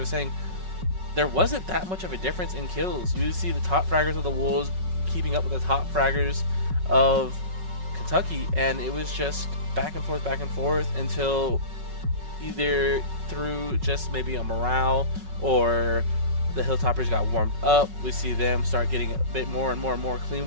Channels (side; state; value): left; late; 5.4 ms